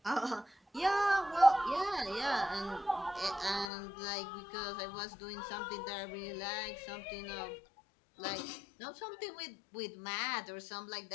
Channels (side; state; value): right; drops out; at 3.7 s